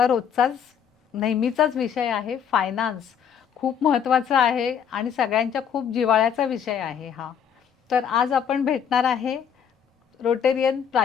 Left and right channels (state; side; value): quieter; right; 8.1 dB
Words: रोजचाच नेहमीचाच विषय आहे, फायनान्स. खूप महत्त्वाचा आहे आणि सगळ्यांच्या खूप जिव्हाळ्याचा विषय आहे हा. तर आज आपण भेटणार आहे रोटेरियन